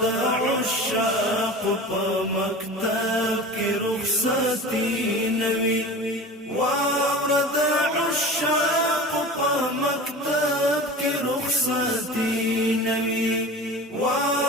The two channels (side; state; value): both; normal; correlation 0.35